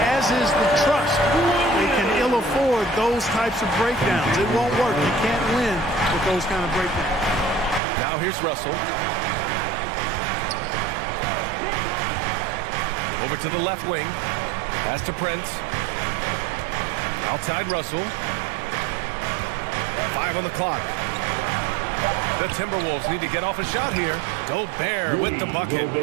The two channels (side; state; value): left; drops out; at 7.8 s